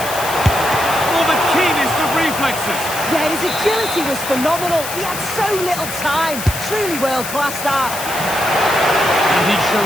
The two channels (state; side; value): noise; left; hiss, 8 dB below the sound